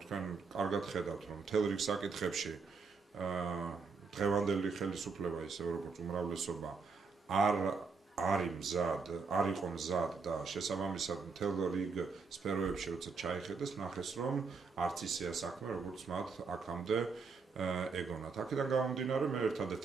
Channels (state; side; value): quieter; left; 4.9 dB